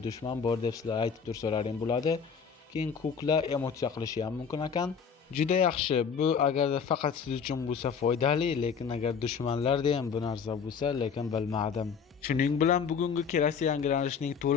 dushman bor deb sizlar aytib tursalaring bo'ladi. Keyin kukla emotsiya qilishi ham mumkin ekan. Juda yaxshi. Bu agarda faqat siz uchun bo'lsa foydali, lekin agar dushmanlarda ham bu narsa bo'lsa, lekin bilmadim. Shuning bilan bugungi kelasi yangilanishning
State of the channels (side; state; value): right; quieter; 6.4 dB